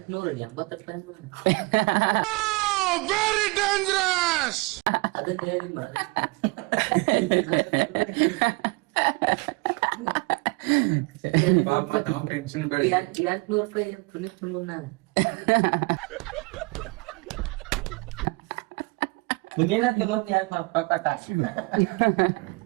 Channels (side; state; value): left; quieter; 27.1 dB